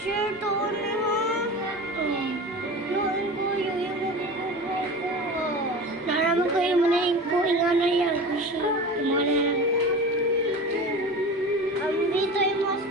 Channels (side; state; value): both; normal; correlation 0.33